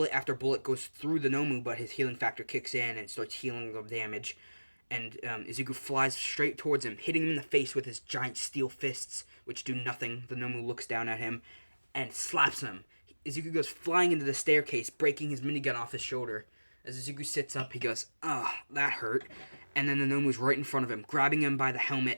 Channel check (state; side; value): inverted; both; correlation -1.00